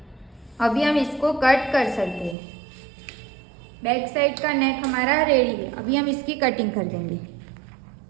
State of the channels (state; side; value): drops out; left; at 2.4 s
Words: अभी हम इसको कट कर सकते हैं। बैक साइड का नेक हमारा रेडी है। अभी हम इसकी कटिंग कर देंगे।